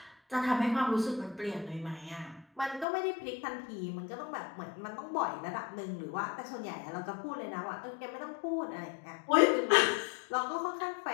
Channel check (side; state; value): right; drops out; at 2.9 s